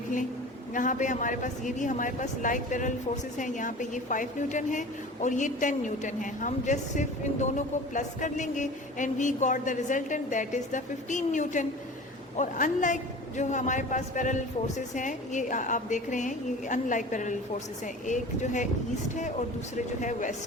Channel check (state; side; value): normal; both; correlation 0.38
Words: लें यहाँ पे हमारे पास ये भी हमारे पास लाइक पैरेलल फोर्सेस हैं, यहाँ पे ये 5 न्यूटन है और ये 10 न्यूटन है। हम जस्ट सिर्फ इन दोनों को प्लस कर लेंगे and we got the resultant that is the 15 newton. और अनलाइक जो हमारे पास पैरेलल फोर्सेस हैं, ये आप देख रहे हैं, ये अनलाइक पैरेलल फोर्सेस हैं, एक जो है ईस्ट है और दूसरे जो है